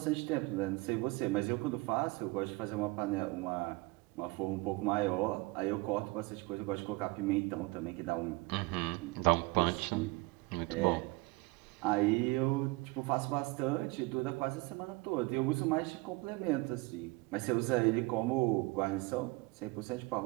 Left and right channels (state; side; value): quieter; left; 24.0 dB